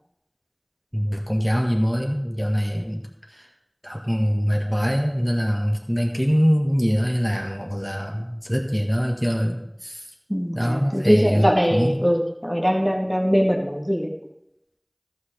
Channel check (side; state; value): both; identical; correlation 1.00